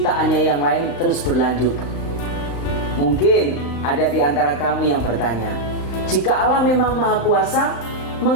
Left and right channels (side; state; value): right; late; 35 ms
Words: yang lain terus berlanjut. Mungkin ada di antara kamu yang bertanya, jika Allah memang Maha Kuasa,